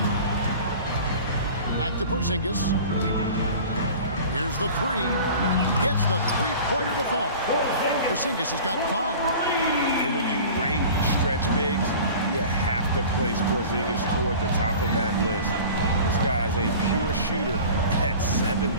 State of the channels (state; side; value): inverted; both; correlation -0.40